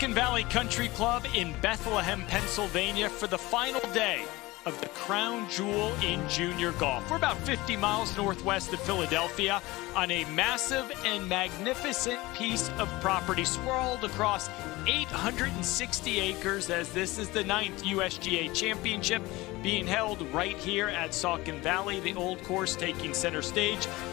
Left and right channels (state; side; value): quieter; right; 20.5 dB